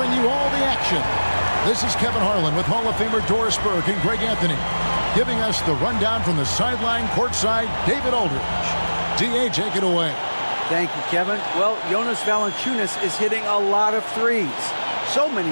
you all the action. This is Kevin Harlan with Hall of Famer Doris Burke and Greg Anthony, giving us the rundown from the sideline courtside, David Aldridge. DA, take it away. Thank you, Kevin. Well, Jonas Valanciunas is hitting a lot of threes. So many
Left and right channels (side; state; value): both; inverted; correlation -1.00